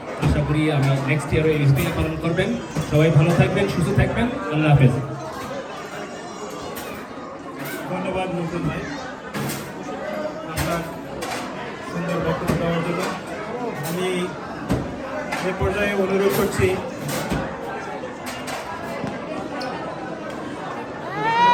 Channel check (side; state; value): both; identical; correlation 1.00